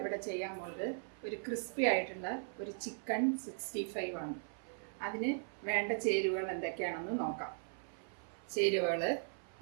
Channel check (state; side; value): silent; left; 52 dB below the other